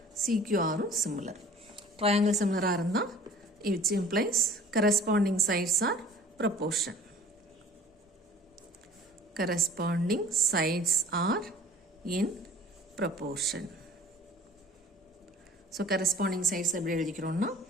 CQR யும் similar. Triangle similar இருந்தா which implies corresponding sides are proportion. Corresponding sides are in proportion. So corresponding sides எப்படி எழுதிக்கிறோம்னா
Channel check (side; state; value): both; normal; correlation 0.48